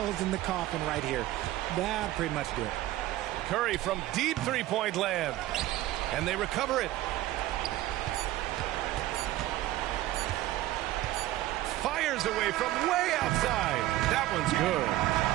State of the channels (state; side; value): quieter; left; 15.5 dB